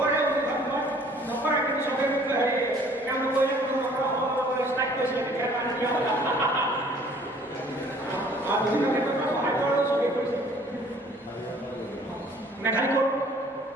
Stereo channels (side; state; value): both; normal; correlation 0.55